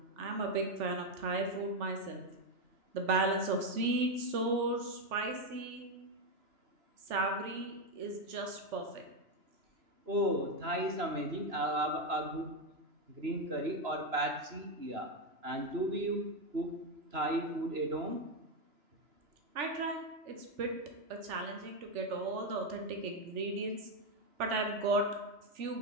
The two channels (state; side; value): late; left; 3.4 ms